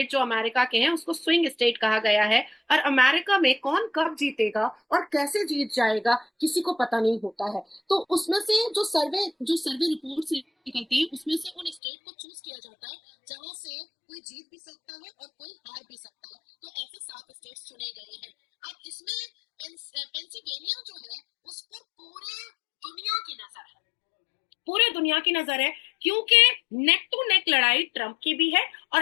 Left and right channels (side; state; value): right; drops out; at 11.8 s